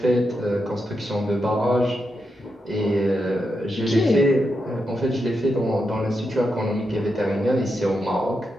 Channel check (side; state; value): both; normal; correlation 0.85